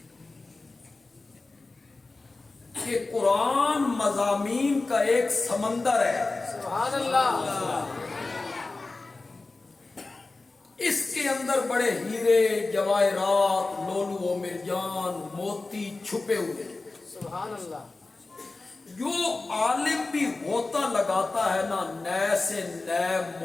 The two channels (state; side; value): quieter; right; 3.4 dB